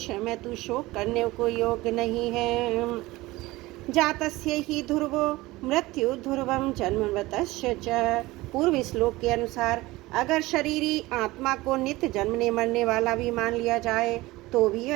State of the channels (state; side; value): quieter; left; 19.6 dB